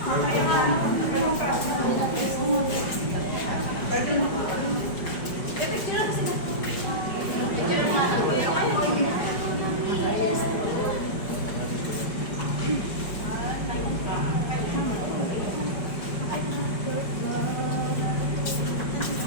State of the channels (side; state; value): right; late; 5.1 ms